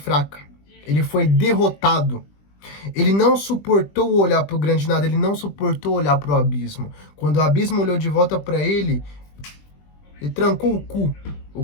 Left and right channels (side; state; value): right; late; 20 ms